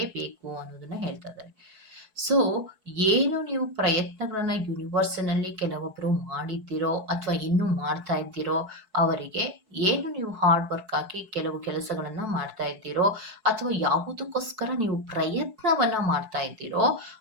ಅನ್ನೋದನ್ನ ಹೇಳ್ತಾ ಇದ್ದಾರೆ. ಸೊ ಏನು ನೀವು ಪ್ರಯತ್ನಗಳನ್ನ ಯೂನಿವರ್ಸಿನಲ್ಲಿ ಕೆಲವೊಬ್ರು ಮಾಡಿದ್ದೀರೋ ಅಥವಾ ಇನ್ನೂ ಮಾಡ್ತಾ ಇದ್ದೀರೋ ಅವರಿಗೆ, ಏನು ನೀವು ಹಾರ್ಡ್ ವರ್ಕ್ ಹಾಕಿ ಕೆಲವು ಕೆಲಸಗಳನ್ನ ಮಾಡ್ತಾ ಇದ್ದೀರೋ ಅಥವಾ ಯಾವುದಕ್ಕೋಸ್ಕರ ನೀವು ಪ್ರಯತ್ನವನ್ನ ಮಾಡ್ತಾ ಇದ್ದೀರೋ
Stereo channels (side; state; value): left; late; 4.6 ms